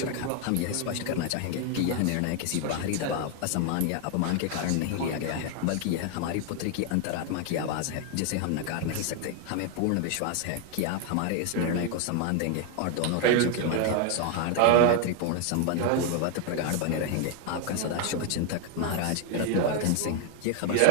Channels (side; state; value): both; different; correlation 0.00